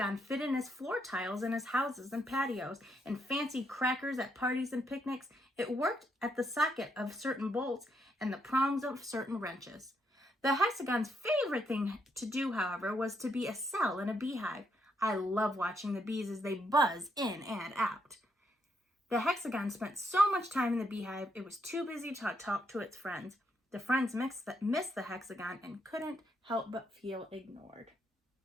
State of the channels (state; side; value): normal; both; correlation 0.77